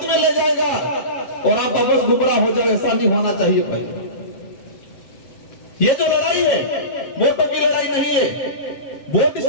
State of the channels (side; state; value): right; late; 7.2 ms